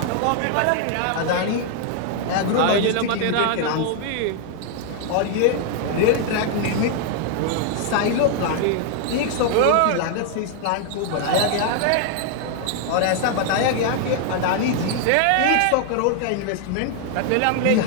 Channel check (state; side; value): different; both; correlation 0.00